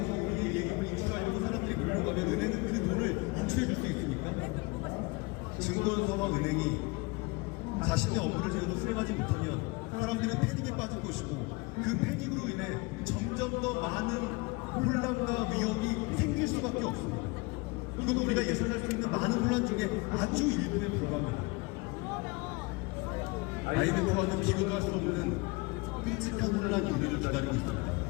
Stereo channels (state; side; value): quieter; right; 26.0 dB